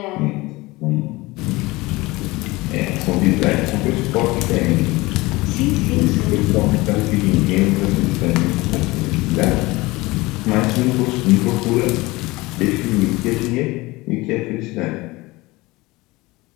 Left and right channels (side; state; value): right; quieter; 21.5 dB